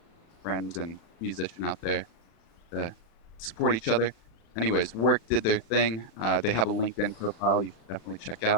friend and musician out there to support each other. Anyways, work did their thing. They have a LinkedIn profile you should definitely check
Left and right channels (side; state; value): right; late; 36 ms